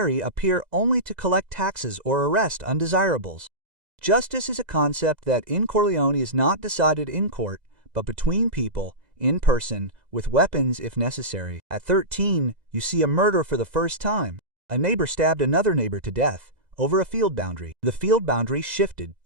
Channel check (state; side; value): late; left; 2.0 ms